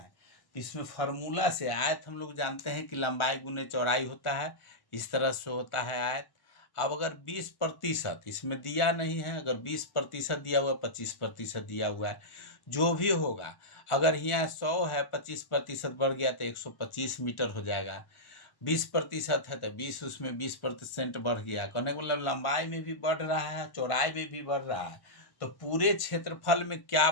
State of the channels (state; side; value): late; right; 1.1 ms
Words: इसमें फार्मूला से आयत हम लोग जानते हैं कि लंबाई गुने चौड़ाई होता है, इस तरह से होता है आयत। अब अगर 20% इसमें दिया नहीं है, अगर 20% दिया हुआ, 25% दिया हुआ है, जो भी होगा, अगर यहाँ 100 है, 25% बढ़ गया तो 125 मीटर हो जाएगा। 20% है तो 20, उसमें 20% बढ़ गया, कहने का मतलब लंबाई में भी बढ़ रहा है, चौड़ाई में भी बढ़ रहा है। तो पूरे क्षेत्रफल में क्या